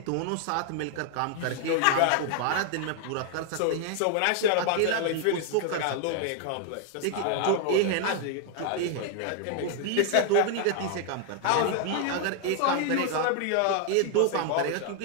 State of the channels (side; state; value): both; different; correlation 0.00